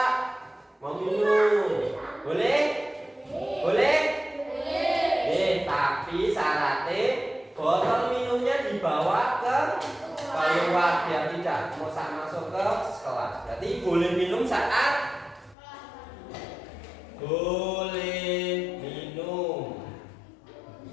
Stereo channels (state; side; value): drops out; right; at 15.6 s